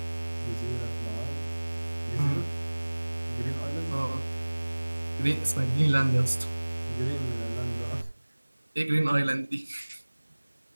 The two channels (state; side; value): inverted; both; correlation -1.00